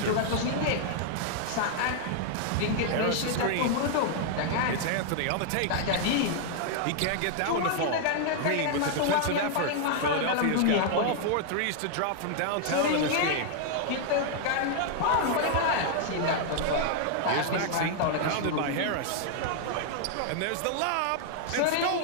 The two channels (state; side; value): different; both; correlation 0.00